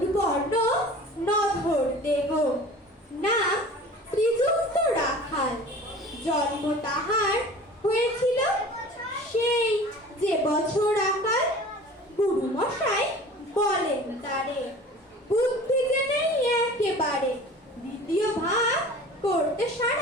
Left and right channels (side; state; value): both; normal; correlation 0.42